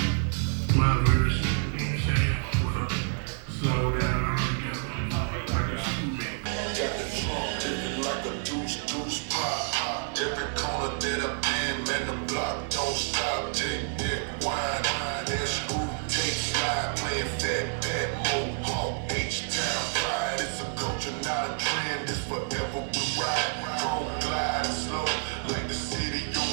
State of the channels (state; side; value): silent; left; 59 dB below the other